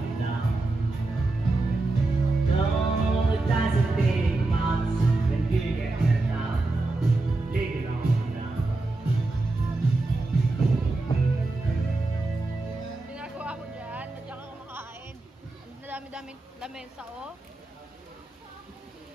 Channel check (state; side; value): quieter; left; 3.1 dB